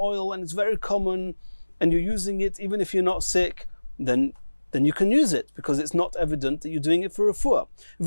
and it's very common, and you're using it even if you're not sick, then you can use it, because it's not evident that you're doing it for refuah.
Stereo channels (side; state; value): both; inverted; correlation -1.00